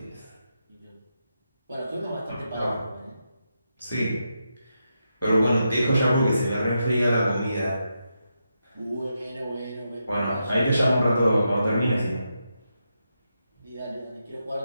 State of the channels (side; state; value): both; inverted; correlation -0.85